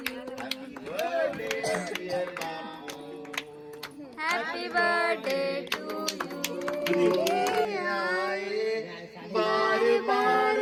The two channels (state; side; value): identical; both; correlation 1.00